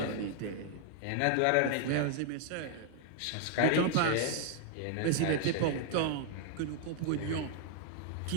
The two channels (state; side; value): different; both; correlation 0.00